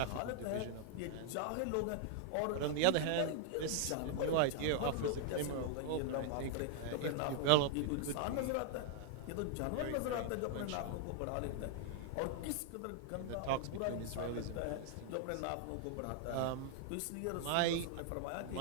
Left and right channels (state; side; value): different; both; correlation 0.00